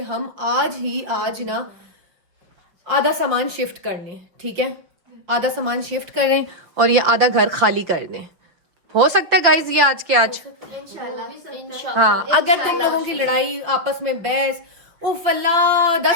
हम आज ना आधा सामान शिफ्ट कर लें, ठीक है। आधा सामान शिफ्ट करें और ये आधा घर खाली कर दें। हो सकता है गाइज ये आज के आज इंशाल्लाह। हाँ, अगर तुम लोगों की लड़ाई आपस में बहस उफ अल्लाह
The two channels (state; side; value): late; left; 6.0 ms